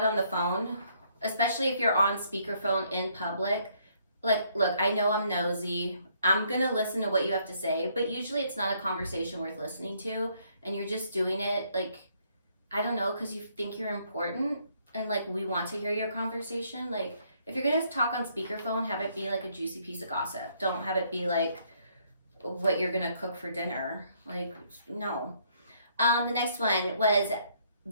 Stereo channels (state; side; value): inverted; both; correlation -0.68